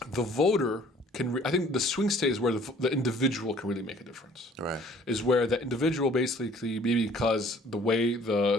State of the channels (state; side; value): normal; both; correlation 0.55